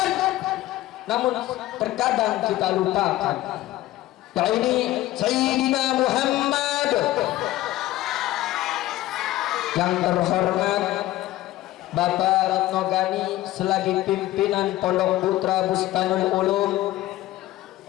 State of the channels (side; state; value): right; quieter; 16.0 dB